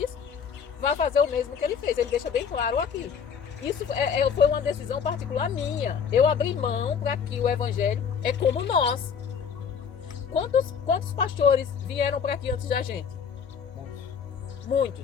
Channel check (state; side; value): quieter; right; 6.9 dB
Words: vão fazer o mesmo que ele fez. Ele deixa bem claro aqui. Isso foi uma decisão particular minha. Eu abri mão para que o evangelho é como nós. Quantos pastores vieram para aqui antes da gente?